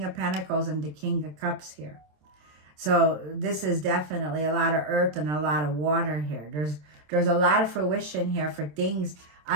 of Pentacles and the King of Cups here. So this is definitely a lot of earth and a lot of water here. There's a lot of fruition here for things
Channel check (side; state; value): left; late; 27 ms